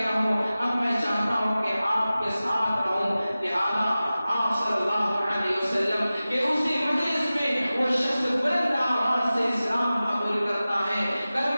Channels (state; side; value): inverted; both; correlation -0.96